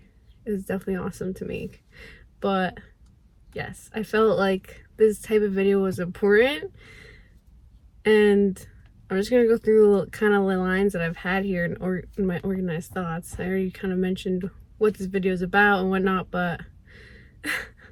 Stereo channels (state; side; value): identical; both; correlation 1.00